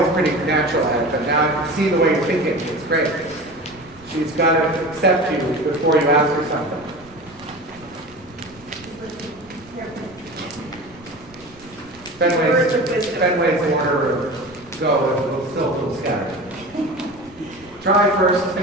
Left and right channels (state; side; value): noise; right; rumble, 26 dB below the sound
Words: pretty natural at it, but now I can see the way you're thinking. It's great. She's got to accept you before you ask her something. Fenway's order of go and we'll still feel scattered. Try first,